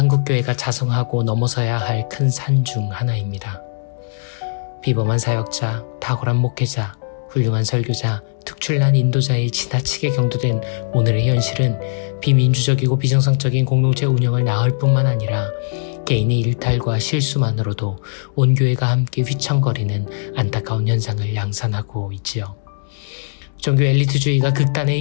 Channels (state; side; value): silent; right; digital silence